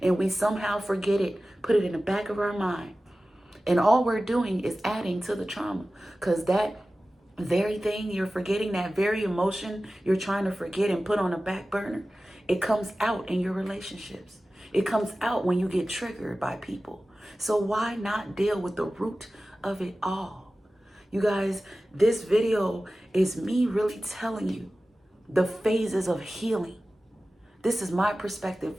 we somehow forget it, put it in the back of our mind. And all we're doing is adding to the trauma, because that very thing you're forgetting, that very emotion you're trying to forget and put on a back burner, it comes out in your relationships. It comes out when you get triggered by people. So why not deal with the root of it all? You guys, this video is me really telling you the phases of healing. This is my perspective.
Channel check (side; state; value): both; normal; correlation 0.96